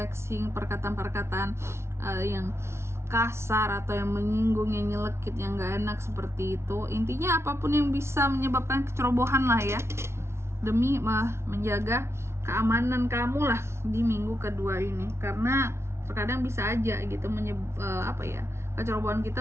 perkataan-perkataan yang kasar atau yang menyinggung, yang nyelekit, yang gak enak seperti itu. Intinya apapun yang bisa menyebabkan kecerobohan lah ya, demi menjaga keamanan kamu lah di minggu kedua ini. Karena terkadang bisa aja gitu kecerobohan kita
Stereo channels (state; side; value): late; left; 0.13 ms